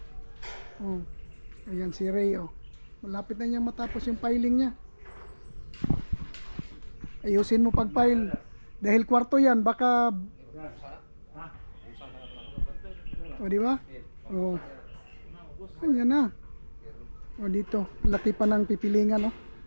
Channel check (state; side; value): inverted; both; correlation -1.00